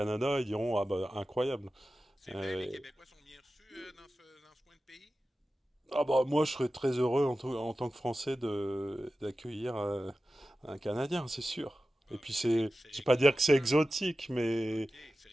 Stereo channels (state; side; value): normal; both; correlation 0.94